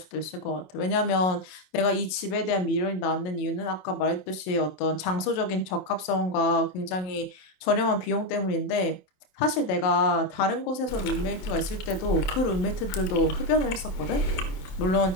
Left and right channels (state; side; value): late; right; 27 ms